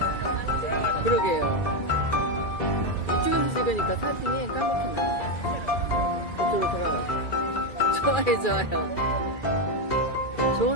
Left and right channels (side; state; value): right; late; 2.3 ms